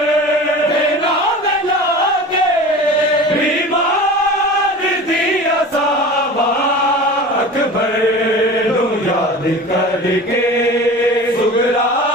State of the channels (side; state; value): both; normal; correlation 0.36